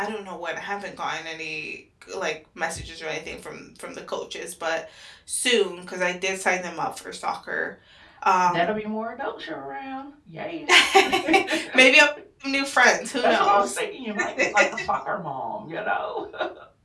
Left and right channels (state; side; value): identical; both; correlation 1.00